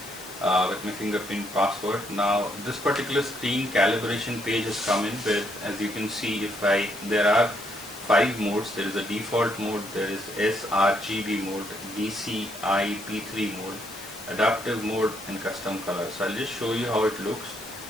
with my fingerprint password. Now this particular screen calibration page has come in with, as you can see, there are 5 modes. There is a default mode, there is sRGB mode, DCI P3 mode, adaptive mode, and custom color. So I'll just show you how it looks.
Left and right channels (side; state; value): left; noise; hiss, 15 dB below the sound